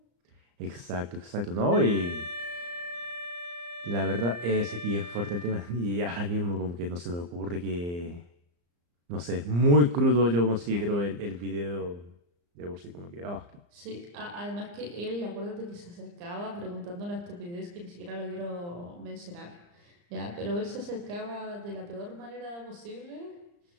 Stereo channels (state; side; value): late; left; 34 ms